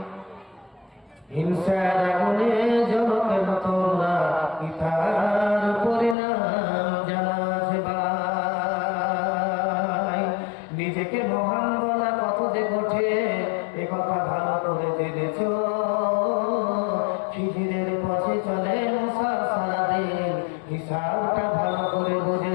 হিংসার আগুনে জ্বলো কেন তোমরা, ইতার পরিণাম জানাস ভাই। নিজেকে মহান বলা কত যে কঠে এ কথা ভালো করে জেনেছ, খিজিরের পথে চলে মুসা সারাদিন হিসাবটা ভালো করে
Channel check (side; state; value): right; drops out; at 6.2 s